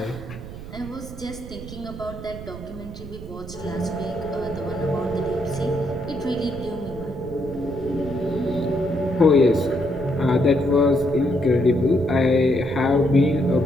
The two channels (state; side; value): noise; right; rumble, 12 dB below the sound